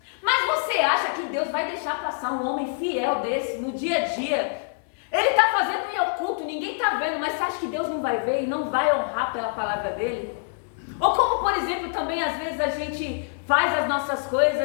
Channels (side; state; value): right; silent; 62 dB below the other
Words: Mas você acha que Deus vai deixar passar um homem fiel desse no dia a dia? Ele está fazendo em oculto, ninguém está vendo, mas você acha que Deus não vai ver e não vai honrar pela palavra dele? Ou como, por exemplo, também às vezes a gente faz as nossas